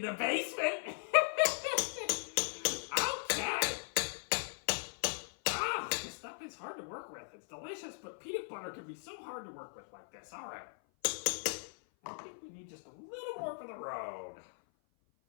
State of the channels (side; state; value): right; silent; 52 dB below the other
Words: the basement. Okay. Ah, this stuff is hard to work with. It's delicious, but peanut butter can be so hard to work with like this. All right. I think we need just a little more for the road.